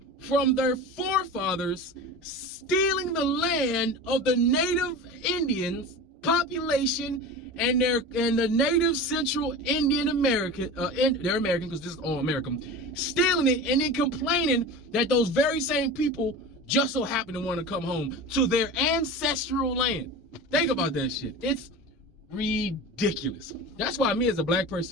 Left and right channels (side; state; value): both; normal; correlation 0.31